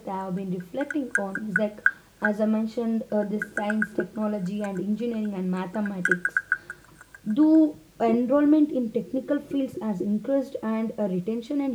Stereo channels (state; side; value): identical; both; correlation 1.00